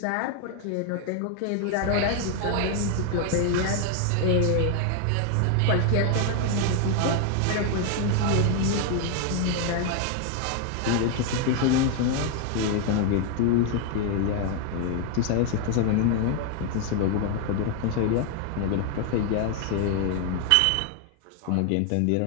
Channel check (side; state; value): both; different; correlation 0.00